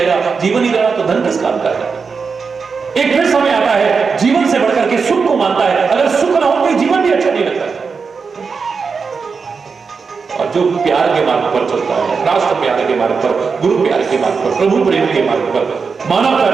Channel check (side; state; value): left; quieter; 5.2 dB